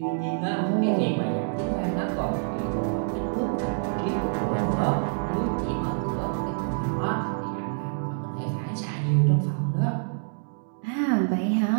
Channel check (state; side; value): silent; left; digital silence